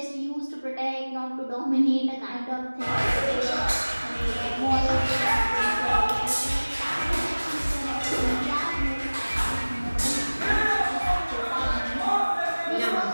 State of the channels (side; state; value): both; inverted; correlation -1.00